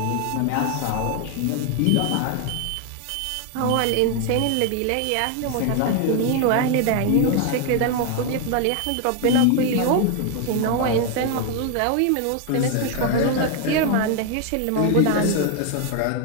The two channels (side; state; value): both; different; correlation 0.01